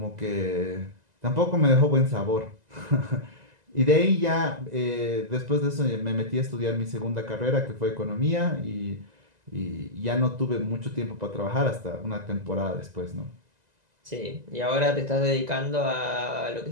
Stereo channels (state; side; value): late; left; 2.0 ms